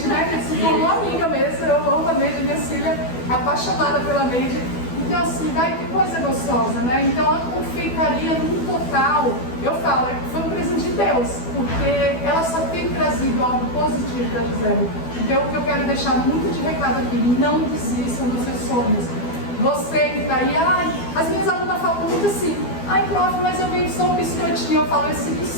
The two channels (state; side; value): late; right; 12 ms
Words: né, se tornou amiga mesmo, eu amo a Neide, minha filha, apaixonada pela Neide. Então assim, daí que coisa gostosa, né? Então a confeitaria no total, eu falo, foi um presente de Deus, porque ela só tem trazido algo positivo da Gisele. Então o que eu quero deixar muito de recado aqui, não desistam dos seus sonhos. Você que está aí, as minhas alunas falam muito assim, prof, mas eu venho só um biscoitinho. Eu falo, esse